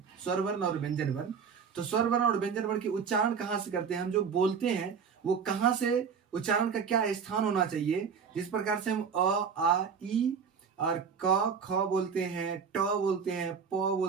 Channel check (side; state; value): left; quieter; 6.4 dB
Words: स्वर वर्ण और व्यंजन वर्ण। तो स्वर वर्ण और व्यंजन वर्ण के उच्चारण कहाँ से करते हैं, हम जो बोलते हैं वो कहाँ से, उच्चारण का क्या स्थान होना चाहिए। जिस प्रकार से हम अ आ ई और क ख बोलते हैं, ट बोलते हैं, प